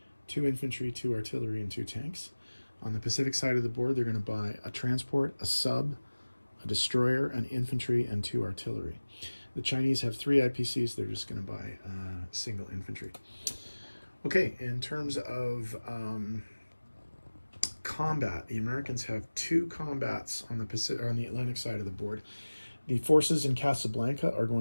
2 infantry, 2 artillery, and 2 tanks. On the Pacific side of the board, they're going to buy a transport, a sub, a destroyer, an infantry, and 2 artillery. The Chinese have 3 IPCs. They're just going to buy single infantry. Okay, in terms of combat, the Americans have 2 combats on the Atlantic side of the board. The forces in Casablanca are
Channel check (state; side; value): inverted; both; correlation -1.00